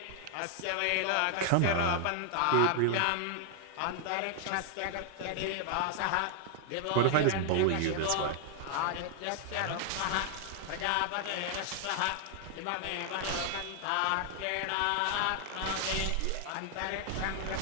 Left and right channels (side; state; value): both; different; correlation 0.00